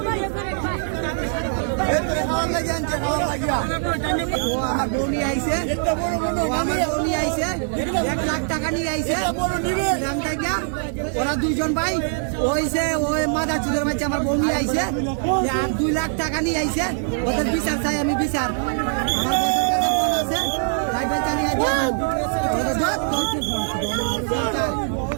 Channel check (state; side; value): silent; left; digital silence